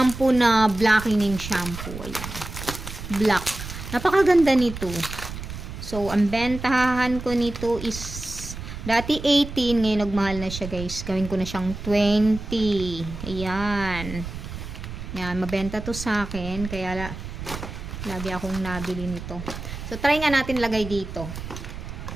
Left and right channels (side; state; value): right; noise; rumble, 9 dB below the sound